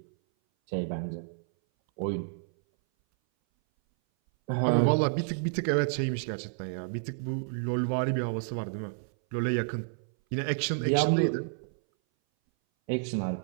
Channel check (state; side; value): silent; left; 58 dB below the other